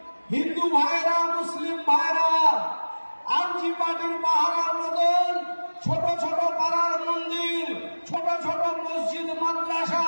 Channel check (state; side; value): inverted; both; correlation -1.00